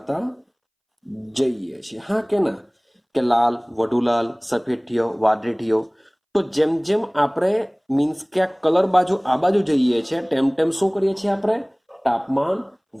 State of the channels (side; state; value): both; identical; correlation 1.00